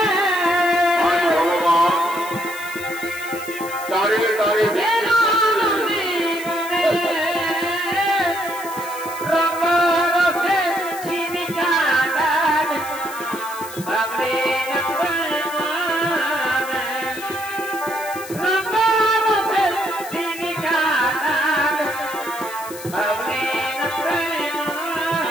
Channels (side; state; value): left; noise; hiss, 14 dB below the sound